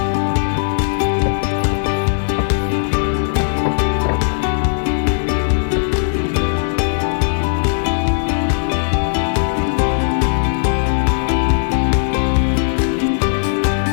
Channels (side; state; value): right; silent; 60 dB below the other